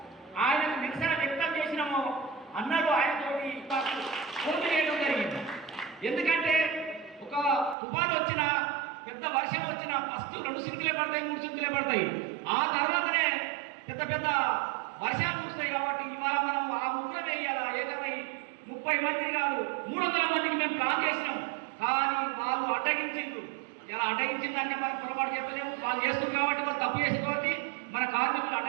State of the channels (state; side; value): drops out; left; at 7.8 s